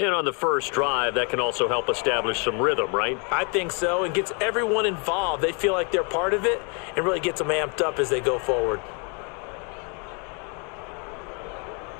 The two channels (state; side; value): quieter; right; 35.7 dB